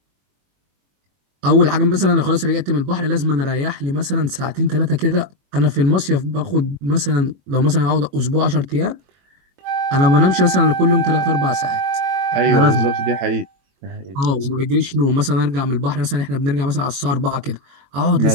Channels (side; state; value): left; late; 22 ms